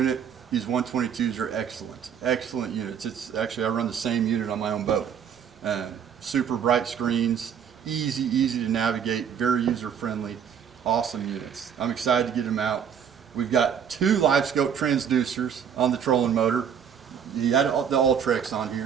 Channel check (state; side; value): quieter; left; 8.0 dB